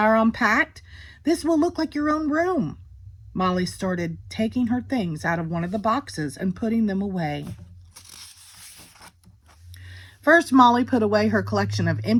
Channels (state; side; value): identical; both; correlation 1.00